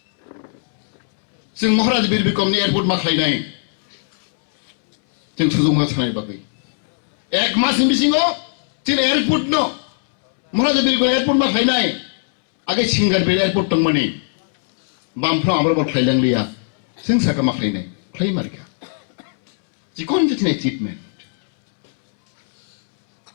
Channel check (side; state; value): right; silent; 67 dB below the other